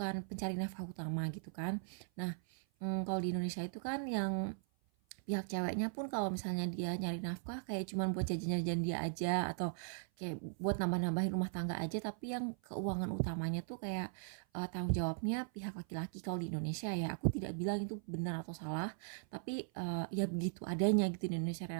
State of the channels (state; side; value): silent; left; 52 dB below the other